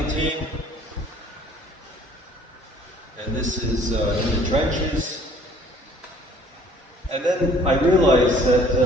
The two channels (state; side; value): normal; both; correlation 0.56